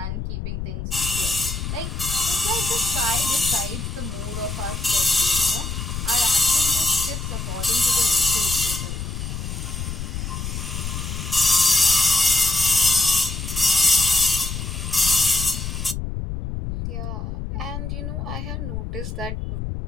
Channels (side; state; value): left; noise; rumble, 5 dB below the sound